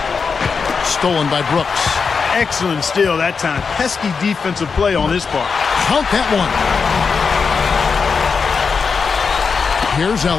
stolen by Brooks. Excellent steal that time. Pesky defensive play on his part. Count that one. Here's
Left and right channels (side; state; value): right; quieter; 5.3 dB